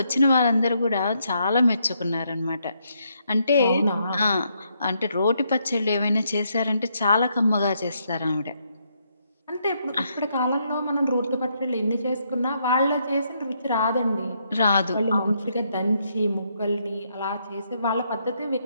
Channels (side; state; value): both; inverted; correlation -0.76